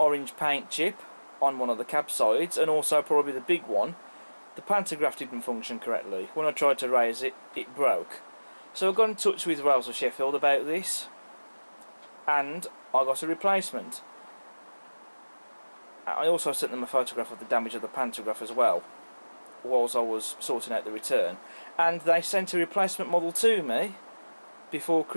paint chip on one of the cab sides, and also probably the big one, the pantograph didn't function correctly. When I tried to raise it, it broke. So I got in touch with Rails of Sheffield about this, and I got a replacement. I also sent them a photograph of the damage of the pantograph as well, whilst I was sorting out the return. And they sent a replacement model to me before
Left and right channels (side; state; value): both; inverted; correlation -1.00